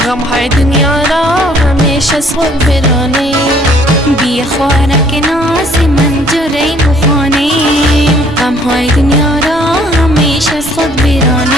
غم های دنیا را همیشه از خود برانی. بیا خلک ناز من جوری بخوانی، غم های دنیا را همیشه از خود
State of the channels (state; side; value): noise; right; rumble, 19 dB below the sound